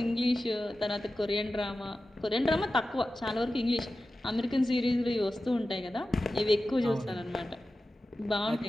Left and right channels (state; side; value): normal; both; correlation 0.94